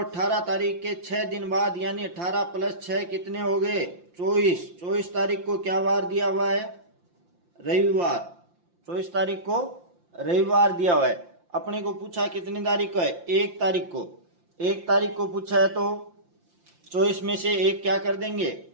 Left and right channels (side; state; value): left; late; 5.8 ms